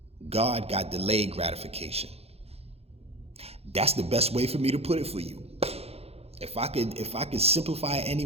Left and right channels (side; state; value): left; late; 0.29 ms